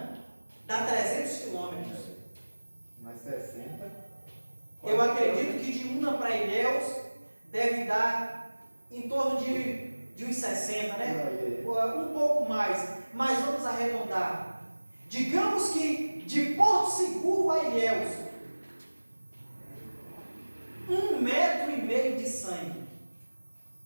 dá 300 quilômetros. Mais 60. Eu acredito que de Una para Ilhéus deve dar em torno de uns 60, né? Um pouco mais, mas vamos arredondar. Digamos que de Porto Seguro a Ilhéus, 1,5 metro de sangue.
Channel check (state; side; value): inverted; both; correlation -1.00